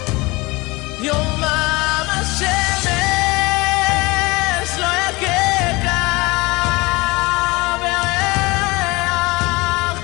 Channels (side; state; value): right; quieter; 23.5 dB